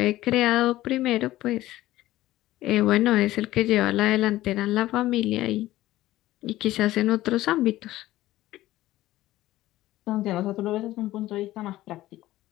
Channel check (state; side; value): quieter; right; 15.8 dB